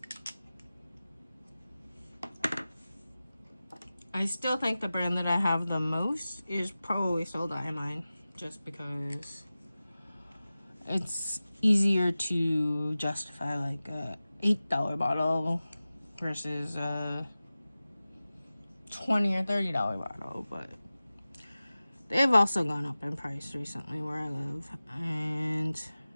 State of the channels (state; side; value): inverted; both; correlation -0.96